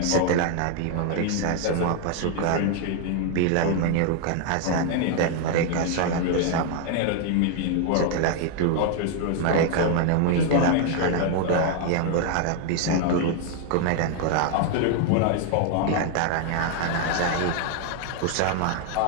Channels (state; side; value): different; both; correlation 0.00